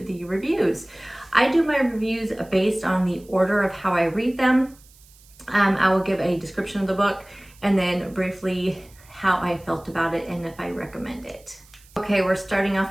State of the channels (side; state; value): right; noise; hiss, 26 dB below the sound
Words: the reviews. I do my reviews based on the order of how I read them. I will give a description of the book and then briefly how I felt about it and if I recommend it. Okay, we're starting